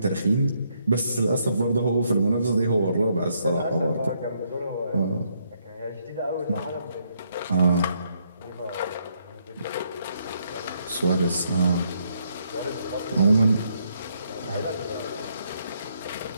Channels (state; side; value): inverted; both; correlation -0.74